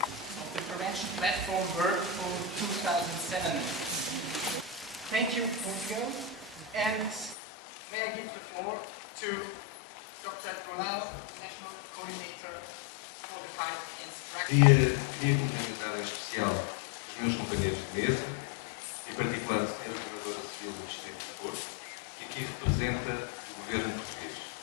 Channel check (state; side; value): drops out; right; at 7.4 s